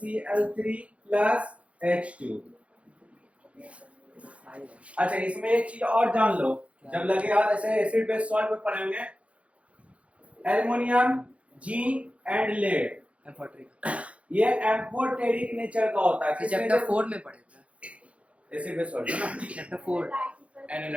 plus H2। अच्छा इसमें एक चीज और जान लो, जब लगे यार ऐसे एसिड बेस सॉल्ट में पढ़ेंगे, एल्युमिनियम जिंक एंड लेड, ये एम्फोटेरिक नेचर का होता है। चैप्टर 4 में पढ़े थे, एसिड बेस सॉल्ट है ना, चैप्टर 4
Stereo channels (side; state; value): left; late; 0.063 ms